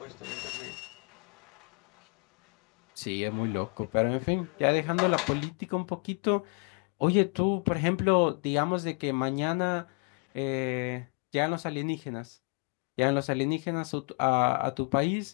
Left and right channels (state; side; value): quieter; right; 34.2 dB